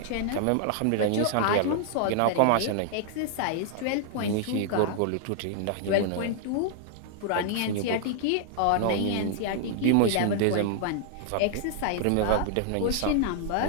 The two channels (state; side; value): different; both; correlation -0.01